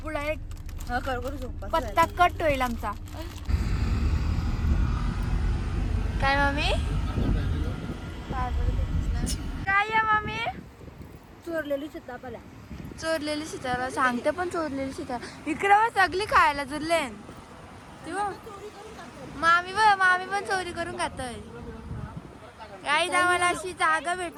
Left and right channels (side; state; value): both; identical; correlation 1.00